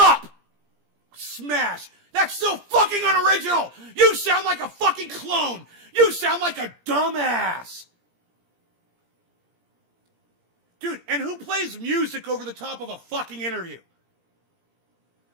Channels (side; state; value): left; late; 17 ms